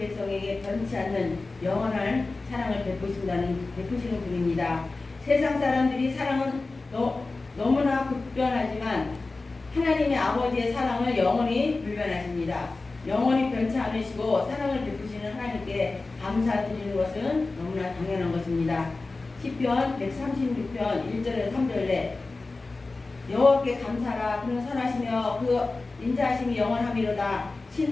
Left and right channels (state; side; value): quieter; right; 3.5 dB